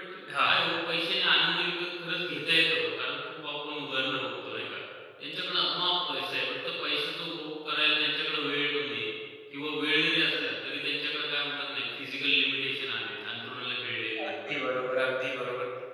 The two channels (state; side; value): identical; both; correlation 1.00